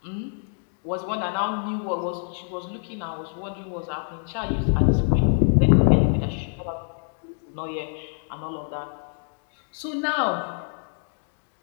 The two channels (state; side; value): silent; right; digital silence